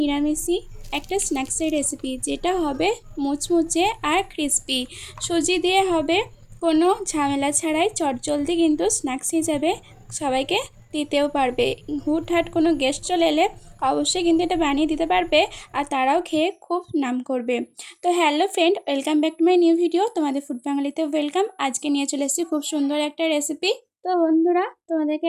একটা স্ন্যাক্সের রেসিপি, যেটা হবে মুচমুচে আর ক্রিস্পি। সুজি দিয়ে হবে, কোনো ঝামেলা ছাড়াই চটজলদি কিন্তু স্ন্যাক্স হিসাবে সবাইকে দিতেও পারবে। হুটহাট কোনো গেস্ট চলে এলে অবশ্যই কিন্তু এটা বানিয়ে দিতে পারবে, আর তারাও খেয়ে খুব নাম করবে। তো hello friend, welcome back to my new video. তোমাদের ফুড বাঙালিতে ওয়েলকাম। আজকে নিয়ে চলে এসেছি খুব সুন্দর একটা রেসিপি। তো বন্ধুরা, তোমাদেরকে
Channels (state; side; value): identical; both; correlation 1.00